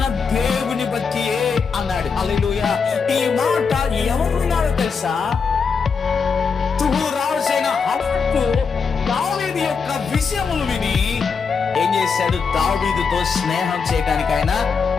దేవుని బట్టియే అన్నాడు. హల్లెలూయా. ఈ మాట ఎవరు విన్నారో తెలుసా, రాజైన హబక్కు దావీదు యొక్క విషయములు విని ఏం చేశాడు, దావీదుతో స్నేహం చేయడానికి ఆయన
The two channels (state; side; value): quieter; right; 5.5 dB